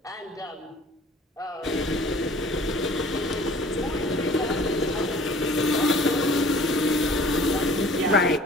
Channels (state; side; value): normal; both; correlation 0.50